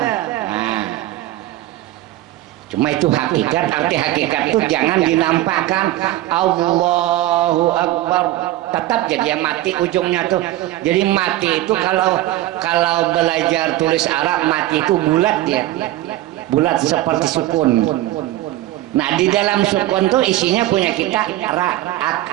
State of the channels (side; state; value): left; quieter; 15.7 dB